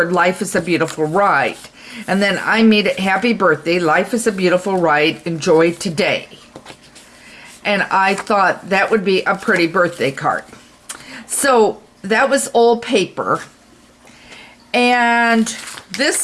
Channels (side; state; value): both; identical; correlation 1.00